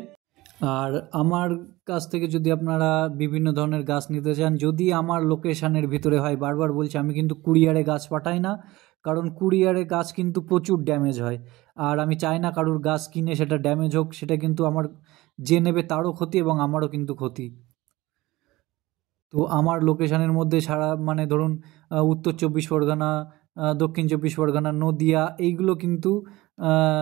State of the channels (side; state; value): left; quieter; 19.2 dB